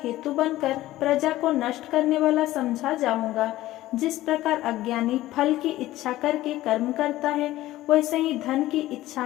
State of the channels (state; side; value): quieter; right; 15.8 dB